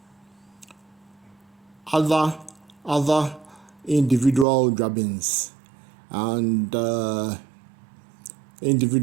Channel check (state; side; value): drops out; left; at 4.5 s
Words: Other individual Juabens and